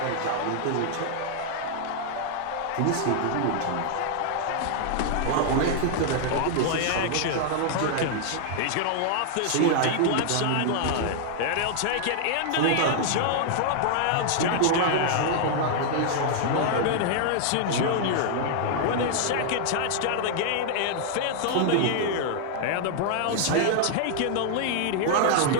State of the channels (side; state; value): both; different; correlation 0.00